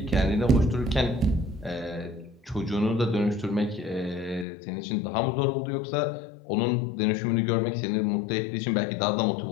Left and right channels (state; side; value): drops out; right; at 4.5 s